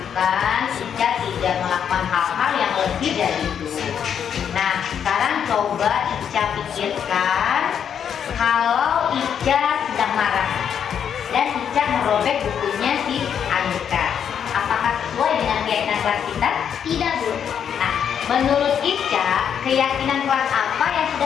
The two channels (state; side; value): quieter; right; 8.2 dB